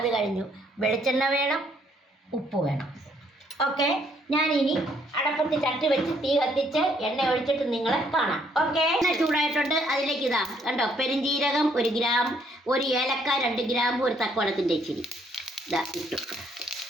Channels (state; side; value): normal; both; correlation 0.68